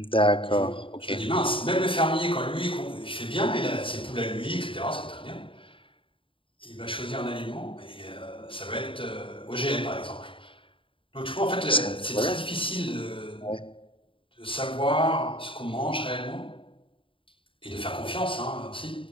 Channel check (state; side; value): late; right; 0.25 ms